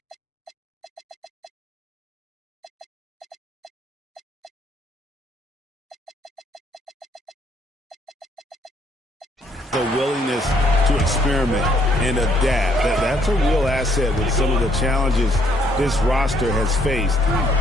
the willingness to experiment and adapt. That's a real asset with some of the challenges this roster has faced.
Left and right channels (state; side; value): normal; both; correlation 0.68